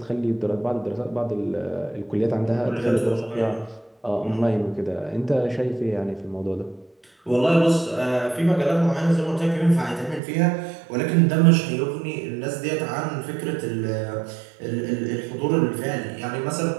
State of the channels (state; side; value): drops out; left; at 10.2 s